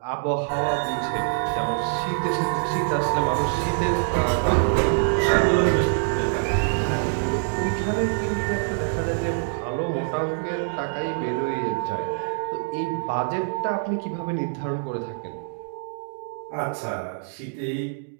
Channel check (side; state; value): left; silent; digital silence